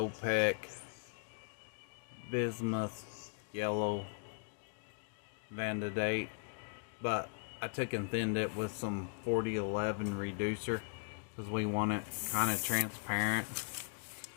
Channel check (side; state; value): right; silent; digital silence